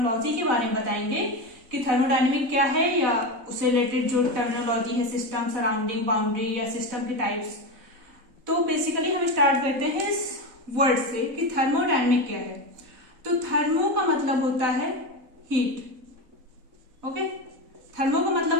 के बारे में बताएंगे कि थर्मोडायनेमिक क्या है या उससे रिलेटेड जो टर्मिनोलॉजी है, सिस्टम, सराउंडिंग, बाउंड्री या सिस्टम के टाइप्स। तो बेसिकली हम स्टार्ट करते हैं इस वर्ड से कि थर्मोडायनेमिक क्या है। तो थर्मो का मतलब होता है हीट, ओके। थर्मो का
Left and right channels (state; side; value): late; left; 4.0 ms